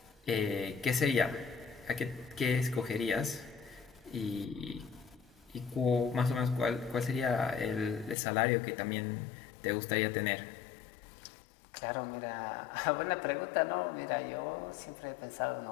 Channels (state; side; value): drops out; right; at 8.2 s